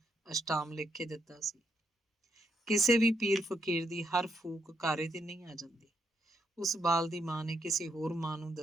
ਅਸ਼ਟਾਮ ਲਿਖ ਕੇ ਦਿੱਤਾ ਸੀ। ਕਿਸੇ ਵੀ ਪੀਰ ਫਕੀਰ ਦੀ ਹਰ ਫੂਕ ਕਾਰੇ ਤੇ ਨਹੀਂ ਆ ਜਾਂਦੀ। ਉਸ ਬਾਲ ਦੀ ਮਾਂ ਨੇ ਕਿਸੇ ਹੋਰ ਮਾਂ ਨੂੰ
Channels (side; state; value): both; normal; correlation 0.77